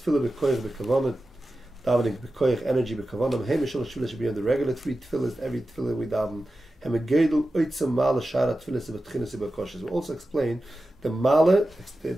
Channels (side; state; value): both; normal; correlation 0.93